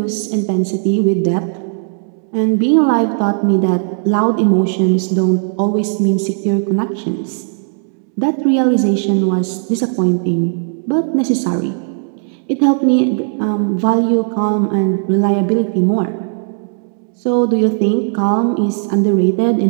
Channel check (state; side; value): silent; left; digital silence